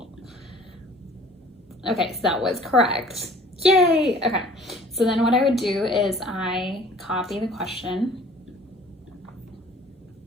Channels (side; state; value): both; normal; correlation 0.50